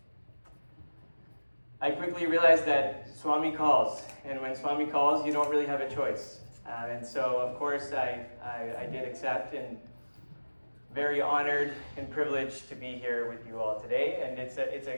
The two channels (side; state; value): both; inverted; correlation -1.00